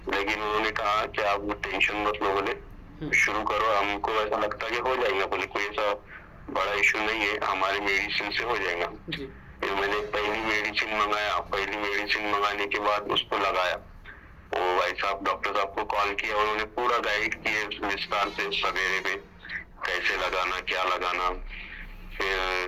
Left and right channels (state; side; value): identical; both; correlation 1.00